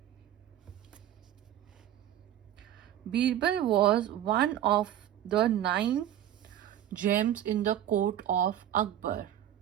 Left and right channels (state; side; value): quieter; left; 11.6 dB